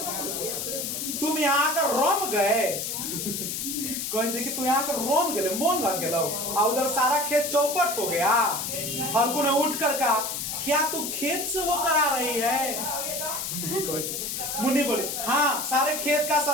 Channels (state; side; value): noise; left; hiss, 3 dB below the sound